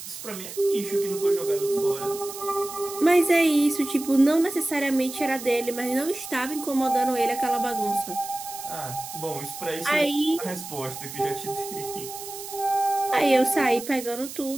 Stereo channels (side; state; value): right; noise; hiss, 11 dB below the sound